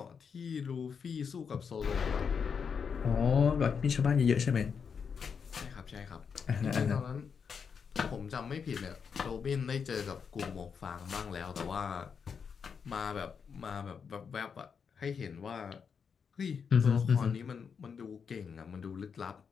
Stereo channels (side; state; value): right; quieter; 6.4 dB